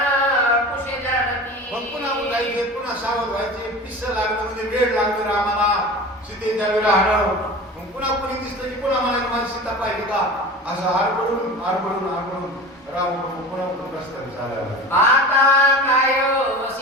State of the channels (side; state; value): both; normal; correlation 0.34